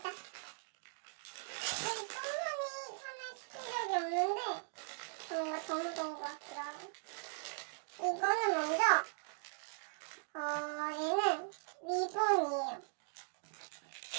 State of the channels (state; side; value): silent; left; digital silence